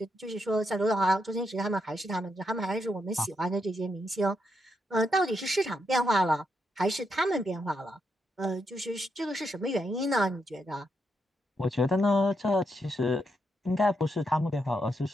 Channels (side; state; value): both; normal; correlation 0.81